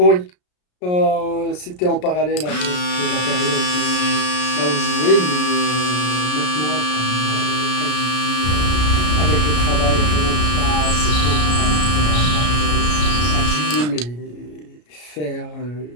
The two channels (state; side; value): late; right; 33 ms